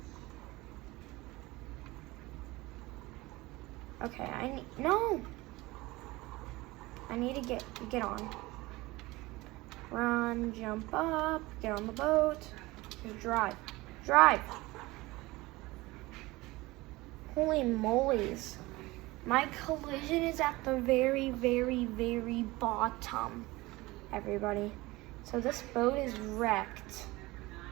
Okay, no! I need to get on. Run, jump up, get on the boat, just drive. Drive! Holy molies. My collision is at the very, very, very bottom, everybody. So this boat is wrecked.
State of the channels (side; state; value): left; quieter; 20.7 dB